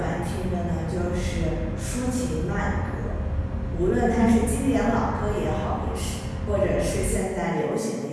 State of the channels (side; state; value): both; identical; correlation 1.00